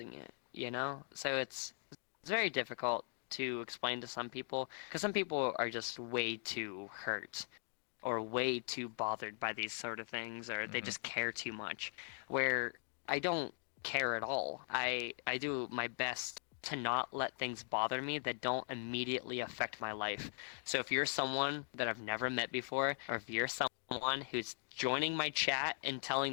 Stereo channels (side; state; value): right; silent; digital silence